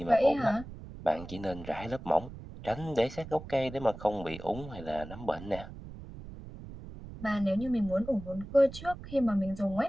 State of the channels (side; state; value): right; noise; rumble, 13 dB below the sound